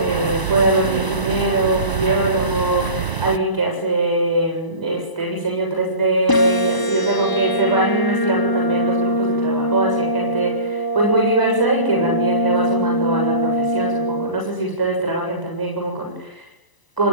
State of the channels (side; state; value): right; late; 1.0 ms